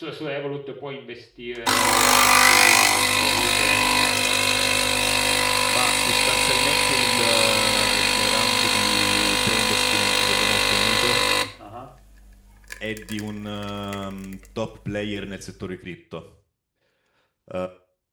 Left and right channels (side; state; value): both; identical; correlation 1.00